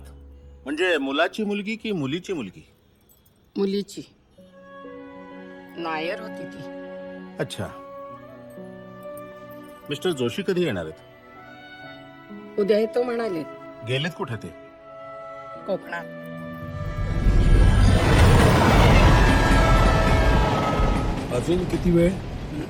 म्हणजे मुलाची मुलगी की मुलीची मुलगी? मुलीची नायर होती ती. अच्छा. मिस्टर जोशी कधी येणार आहेत? उद्या येतो म्हणाले. गेलेत कुठे ते? कोकणात. अजून किती वेळ?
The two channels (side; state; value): both; identical; correlation 1.00